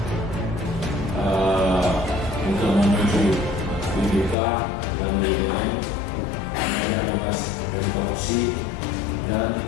Untuk menuju IBK dan BUMN wilayah bebas dari korupsi dan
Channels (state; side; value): drops out; right; at 4.4 s